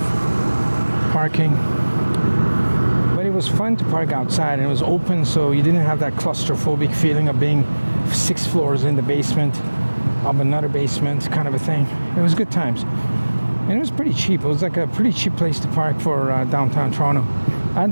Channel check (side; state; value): both; inverted; correlation -1.00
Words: parking. But it was fun to park outside, and it was open, so you didn't have that claustrophobic feeling of being 6 floors in the basement of another basement kind of a thing. It was good times, and it was pretty cheap. It was like a pretty cheap place to park for downtown Toronto at